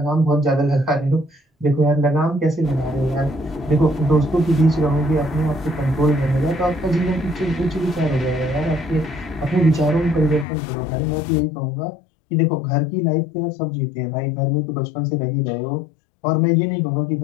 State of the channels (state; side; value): drops out; right; at 10.5 s